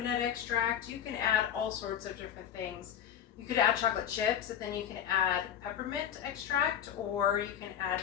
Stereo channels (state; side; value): quieter; right; 9.7 dB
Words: extract. You can add all sorts of different things. You could add chocolate chips, and then you can add peppermint extract, or you can add